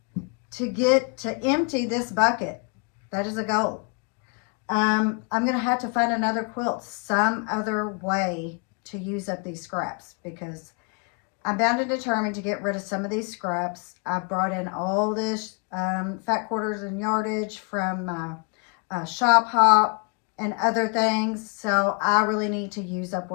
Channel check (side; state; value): right; quieter; 35.0 dB